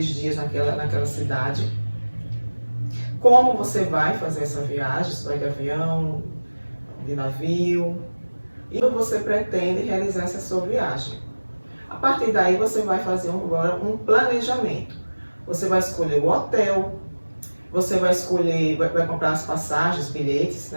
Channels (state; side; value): inverted; both; correlation -1.00